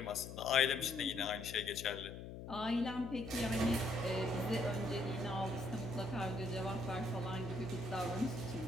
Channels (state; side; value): noise; left; hum, 9 dB below the sound